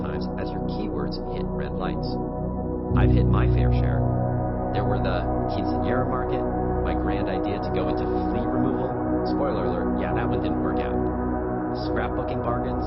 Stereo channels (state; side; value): identical; both; correlation 1.00